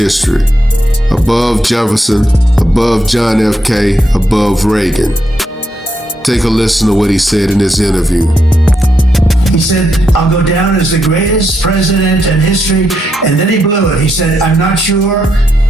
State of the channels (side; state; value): both; normal; correlation 0.81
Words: Above Jefferson, above John F. K., above Reagan. Take a listen to what he said in this interview. He said, I'll go down as the greatest president in history. And then he blew it. He said, I'm not sure